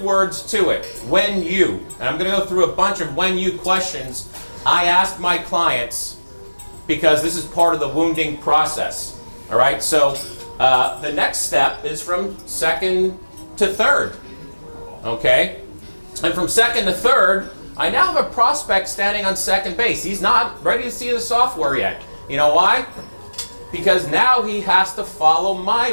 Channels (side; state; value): both; inverted; correlation -1.00